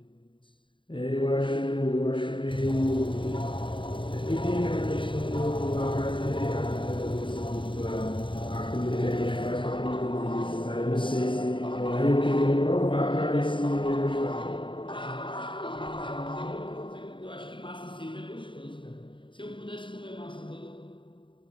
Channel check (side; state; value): right; late; 0.24 ms